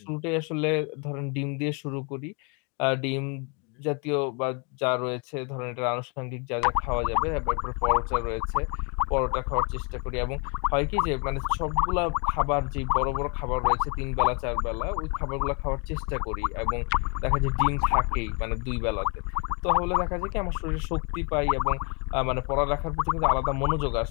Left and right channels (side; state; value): right; quieter; 34.5 dB